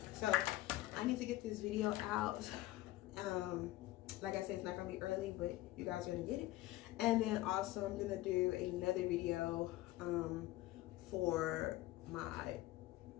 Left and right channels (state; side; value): quieter; right; 16.8 dB